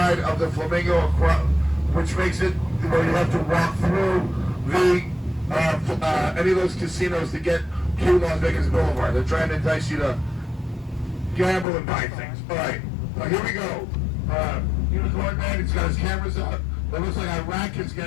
of the Flamingo, which makes it where you have to walk through the any of those casinos to get to Las Vegas Boulevard. They're trying to entice you to gamble and buy things. All right, here we go. Unicorn Man, he's got his cameras up. It looks like Iraq is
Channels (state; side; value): drops out; right; at 11.7 s